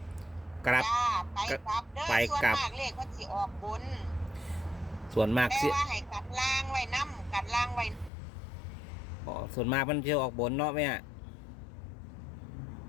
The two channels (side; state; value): right; drops out; at 8.1 s